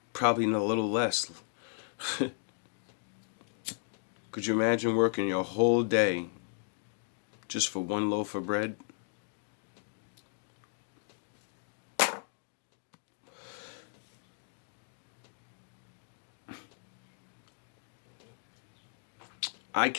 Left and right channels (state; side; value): silent; right; digital silence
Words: Probably a little less. Could you imagine working your whole day just for one loaf of bread? I